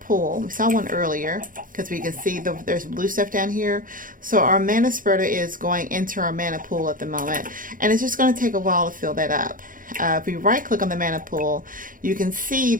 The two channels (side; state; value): left; late; 0.40 ms